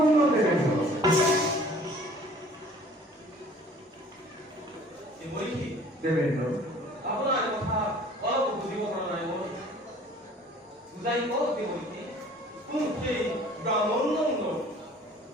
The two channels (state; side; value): normal; both; correlation 0.51